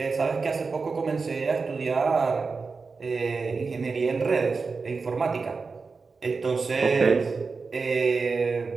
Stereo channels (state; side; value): quieter; left; 4.6 dB